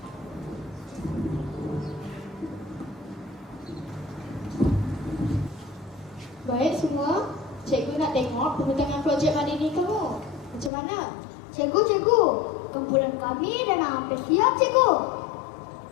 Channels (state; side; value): drops out; right; at 10.7 s